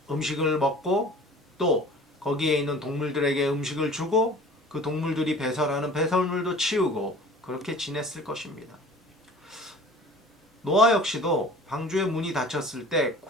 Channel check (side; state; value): both; normal; correlation 0.45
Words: 음식을 먹고, 또 거기에 있는 동물들에게 음식을 주고, 그 동물들이 배설하는 배설물도 치우고, 그렇게 지냈을 것입니다. 노아 역시도 방주의 문이 닫혔을 때